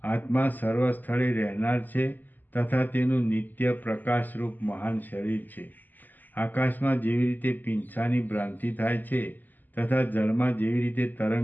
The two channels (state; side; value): late; right; 0.086 ms